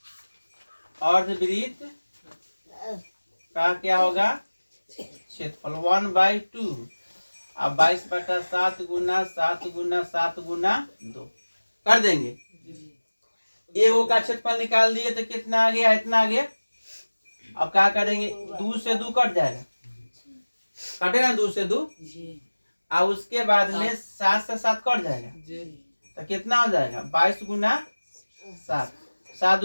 अर्धवृत्त का क्या होगा, क्षेत्रफल 1/2 अब 22/7 गुना 7 गुना 7 गुना 2 कर देंगे। एगो का क्षेत्रफल निकाल दिए तो कितना आ गया, इतना आ गया। अब क्या करेंगे, 2 से 2 कट जाएगा, कटेगा 2 से 2। और उसके बाद में 7 से 7 कट जाएगा, तो कितना हो जाएगा 22 गुना 7, 7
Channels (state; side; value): inverted; both; correlation -1.00